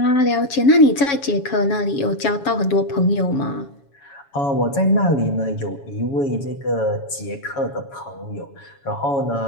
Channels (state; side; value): late; right; 7.1 ms